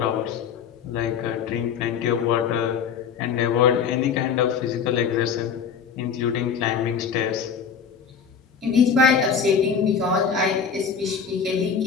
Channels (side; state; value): right; quieter; 6.7 dB